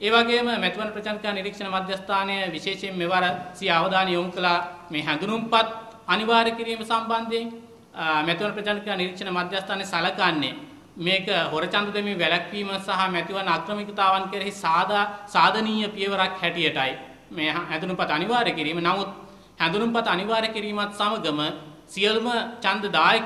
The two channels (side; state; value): both; identical; correlation 1.00